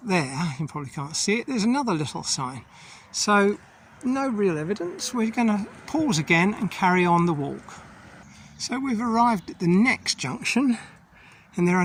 there, you probably can't see it, there's another little sign. So no real evidence. We're going to pause again and carry on the walk. So we've arrived at the next junction, and there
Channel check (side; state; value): both; identical; correlation 1.00